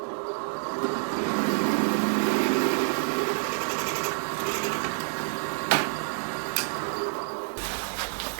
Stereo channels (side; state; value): left; silent; digital silence